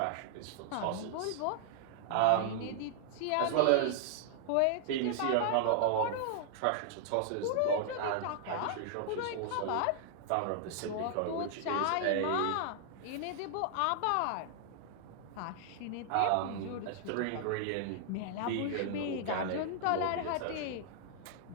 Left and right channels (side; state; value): both; different; correlation -0.01